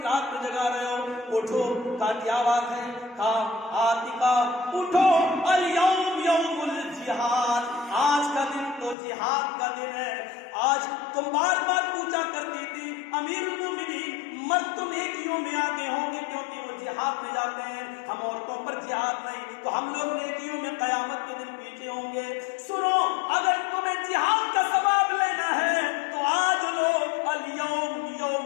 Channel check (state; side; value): drops out; right; at 9.0 s